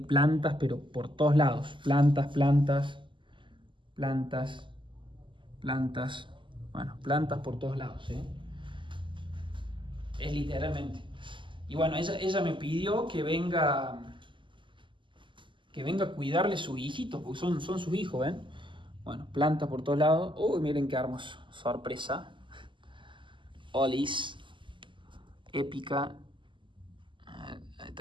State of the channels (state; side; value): late; left; 0.24 ms